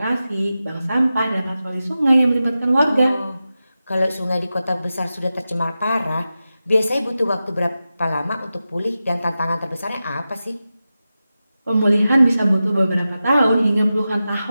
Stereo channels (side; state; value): both; inverted; correlation -0.93